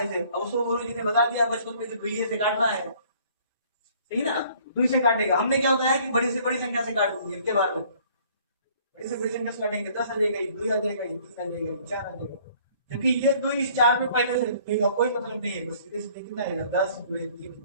इसे, अब उसको गुरु जी ने बता दिया बचपन में कि दुइये से काटना है, सही ना? दुई से काटेगा, हमने क्या बताया कि बड़ी से बड़ी संख्या से काट दीजिए इनके बारे में, बड़ी से बड़ी संख्या से काटेंगे 10 आ जाएगा, 2 आ जाएगा, 3 आ जाएगा, 4 आ जाएगा, क्योंकि ये 2 इस 4 में पहले से देगा, कोई मतलब नहीं है, बस सीधे सीधे कितना आएगा 10 गुणे 3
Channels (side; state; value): both; inverted; correlation -0.57